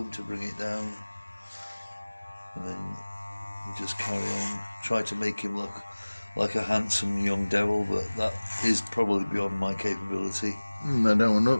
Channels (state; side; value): inverted; both; correlation -1.00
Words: to bring it down. And then you just carry on. Try to make him look like a handsome young devil, but that is probably beyond my capability. I don't want to